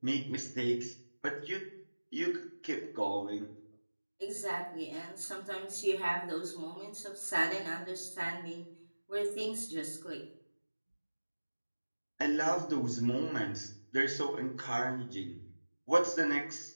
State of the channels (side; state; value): both; inverted; correlation -1.00